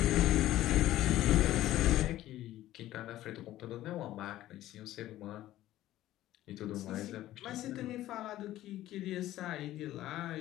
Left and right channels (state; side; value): quieter; right; 14.5 dB